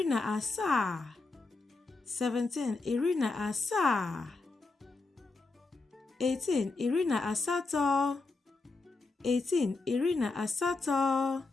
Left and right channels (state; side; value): quieter; right; 3.7 dB